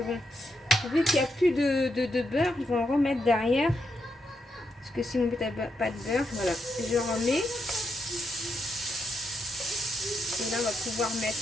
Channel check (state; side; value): normal; both; correlation 0.82